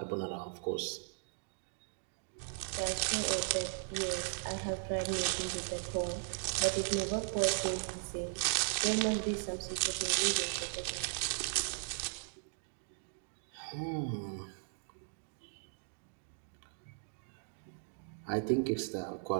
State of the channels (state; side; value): silent; left; digital silence